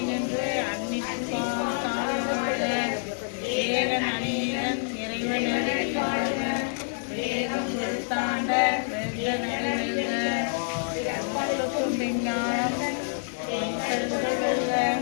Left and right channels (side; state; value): right; silent; 60 dB below the other